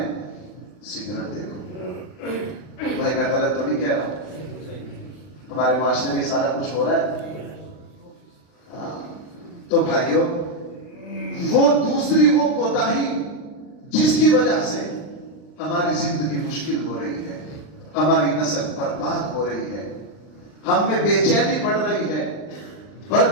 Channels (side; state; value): right; late; 39 ms